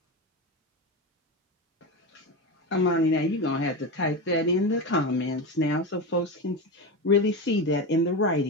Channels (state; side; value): normal; both; correlation 0.19